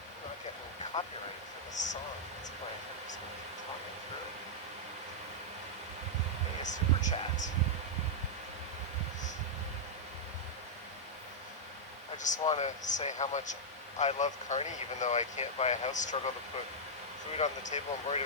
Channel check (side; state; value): both; normal; correlation -0.06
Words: not getting copyrighted for this song that's playing. I'm just going to keep talking through. A super chat. I just want to say how much I love Carney, even though I can't buy a house, struggle to put food on the table, and worried